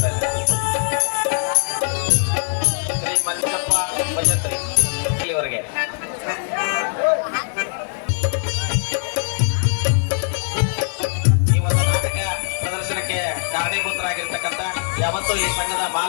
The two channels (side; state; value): right; silent; digital silence